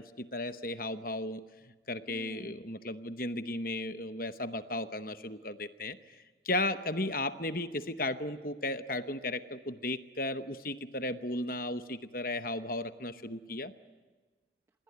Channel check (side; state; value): both; normal; correlation 0.14